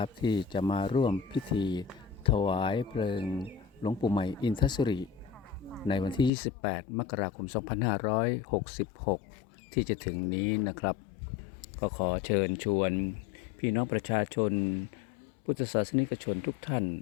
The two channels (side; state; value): right; drops out; at 6.3 s